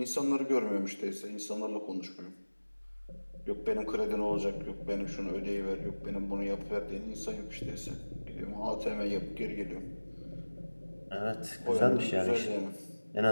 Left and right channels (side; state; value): both; inverted; correlation -1.00